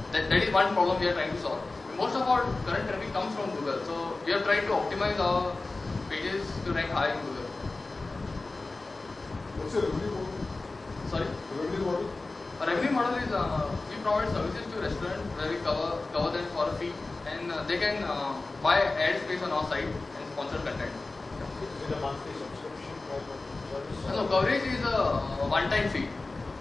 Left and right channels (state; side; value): quieter; right; 3.4 dB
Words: that is one problem we are trying to solve. Most of our current traffic comes from Google, so we are trying to optimize our pages to rank high in Google. What's your revenue model? Sorry? Revenue model? Our revenue model is we provide services to restaurants where we cover them for a fee, and they can buy ad space on our site and sponsor content. Is it a monthly subscription type of service? No, coverage is a one-time fee.